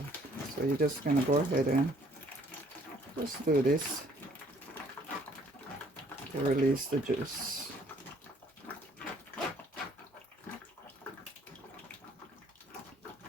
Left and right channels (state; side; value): normal; both; correlation 0.61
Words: So you're just gonna go ahead and just do this to release the juice.